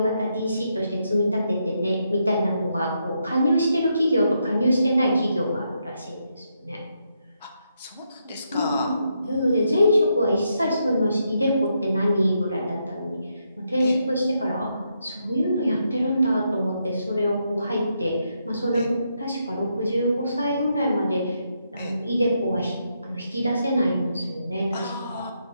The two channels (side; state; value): both; inverted; correlation -0.80